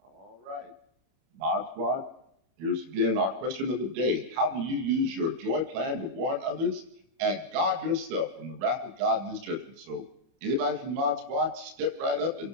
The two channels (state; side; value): late; left; 31 ms